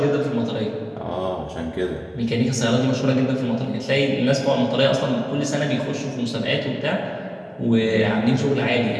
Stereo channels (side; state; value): both; identical; correlation 1.00